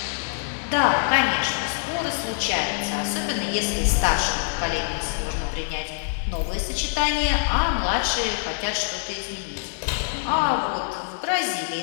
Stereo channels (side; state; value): right; silent; digital silence